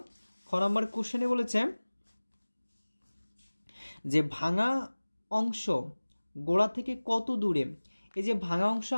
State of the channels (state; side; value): inverted; both; correlation -1.00